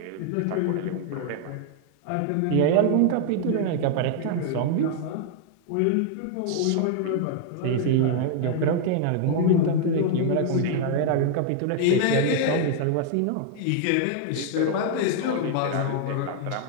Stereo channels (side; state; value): both; different; correlation 0.00